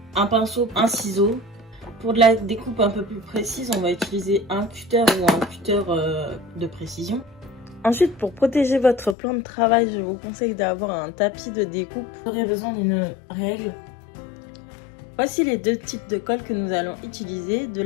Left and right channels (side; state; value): right; drops out; at 9.2 s